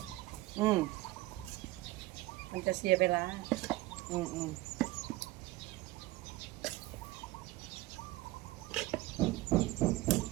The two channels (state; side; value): quieter; left; 18.8 dB